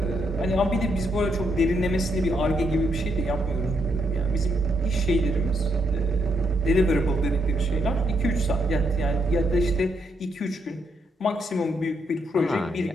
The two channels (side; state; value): both; normal; correlation 0.77